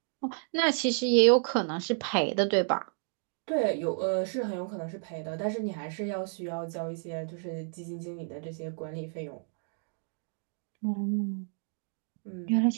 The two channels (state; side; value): silent; left; 57 dB below the other